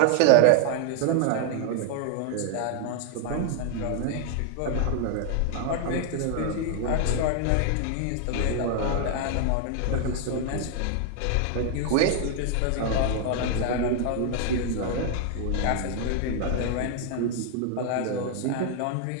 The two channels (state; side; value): different; both; correlation 0.00